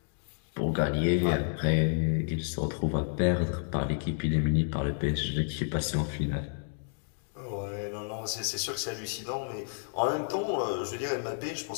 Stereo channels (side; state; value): right; silent; digital silence